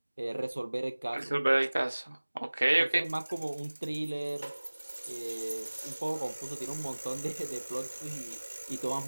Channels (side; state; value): both; inverted; correlation -1.00